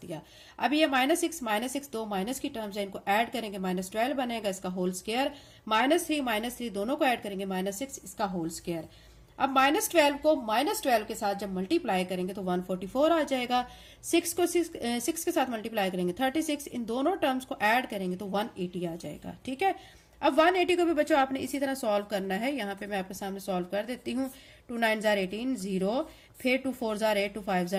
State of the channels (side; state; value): both; identical; correlation 1.00